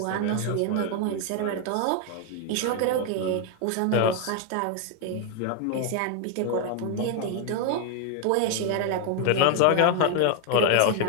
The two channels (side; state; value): both; different; correlation 0.01